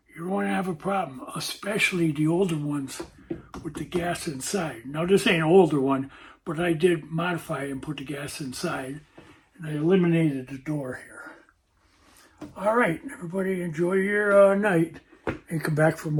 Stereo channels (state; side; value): identical; both; correlation 1.00